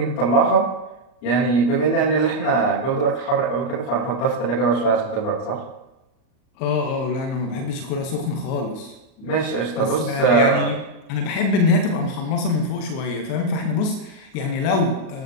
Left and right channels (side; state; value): right; late; 38 ms